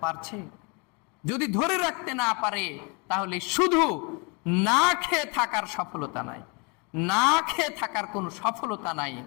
পারছে? যদি ধরে রাখতে না পারে তাহলে শুধু না খেয়ে থাকার সফলতা নাই, না খেয়ে থাকার কোনো সফলতা নাই।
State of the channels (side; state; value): right; quieter; 31.9 dB